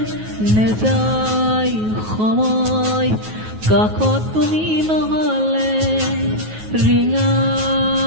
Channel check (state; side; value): late; left; 9.4 ms